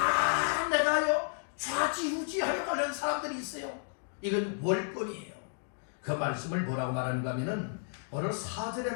내가요 좌지우지하려고 하는 사람들이 있어요. 이건 월권이에요. 그 말씀을 뭐라고 말하는가 하면은 오늘 4절의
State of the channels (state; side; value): silent; right; digital silence